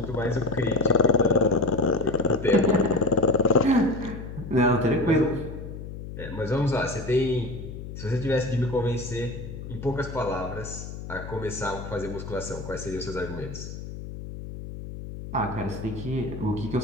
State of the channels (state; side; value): noise; left; hum, 10 dB below the sound